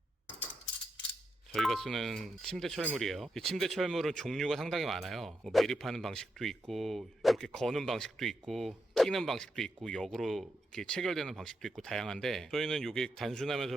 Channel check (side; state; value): both; normal; correlation 0.84